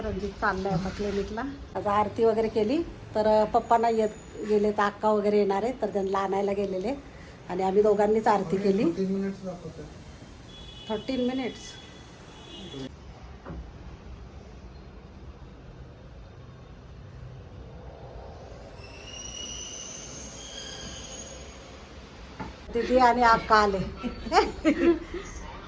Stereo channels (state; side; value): identical; both; correlation 1.00